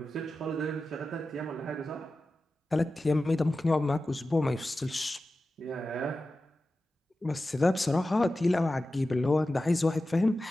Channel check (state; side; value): normal; both; correlation 0.94